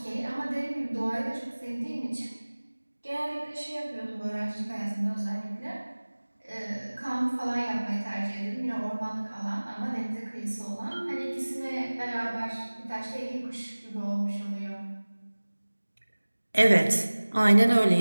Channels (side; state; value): both; inverted; correlation -1.00